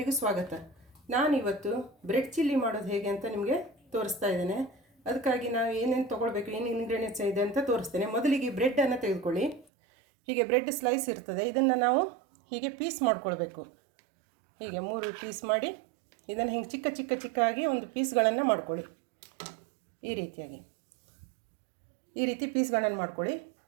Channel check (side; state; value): left; drops out; at 9.7 s